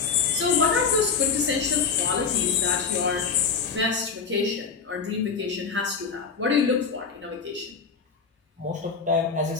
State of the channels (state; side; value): quieter; right; 5.6 dB